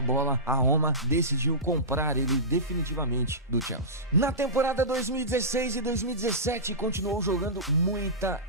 bola, a Roma decidiu comprar ele definitivamente do Chelsea. Na temporada 2016 e 2017 continuou jogando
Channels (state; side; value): normal; both; correlation -0.19